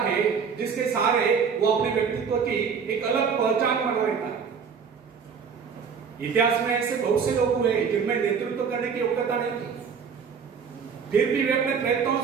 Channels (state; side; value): quieter; left; 6.3 dB